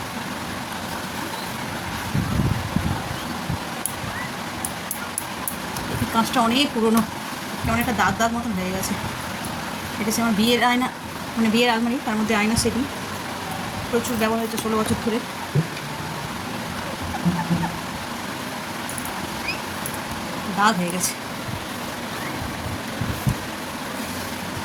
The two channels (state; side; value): identical; both; correlation 1.00